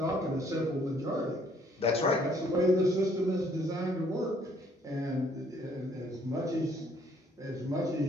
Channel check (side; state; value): both; normal; correlation 0.64